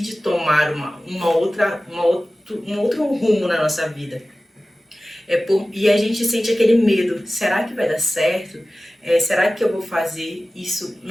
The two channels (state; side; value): normal; both; correlation 0.96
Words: tomar um outro rumo na nossa vida, e a gente sente aquele medo, será que vai dar certo? Será que eu vou fazer isso?